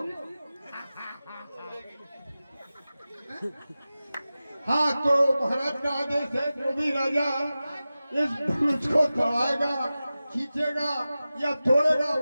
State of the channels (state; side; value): inverted; both; correlation -0.95